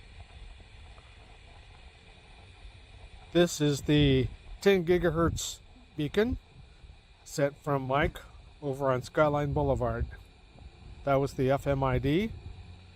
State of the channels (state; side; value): identical; both; correlation 1.00